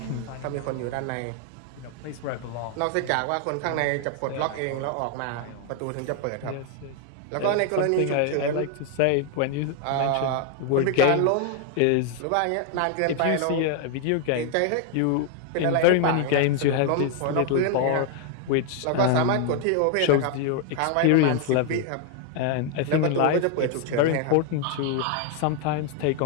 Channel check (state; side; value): different; both; correlation 0.00